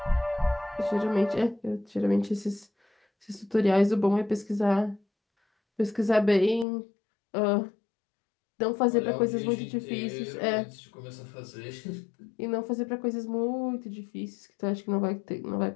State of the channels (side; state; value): right; drops out; at 6.7 s